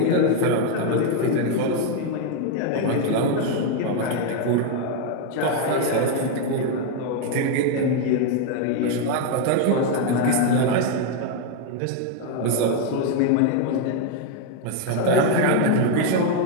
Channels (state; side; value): different; both; correlation 0.01